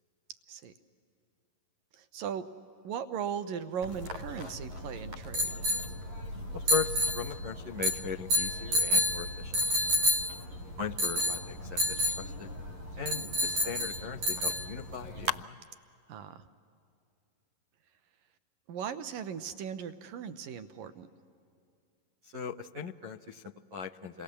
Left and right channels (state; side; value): late; left; 11 ms